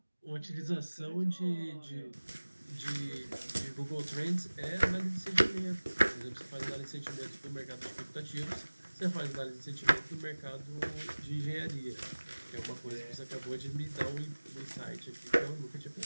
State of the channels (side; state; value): both; inverted; correlation -1.00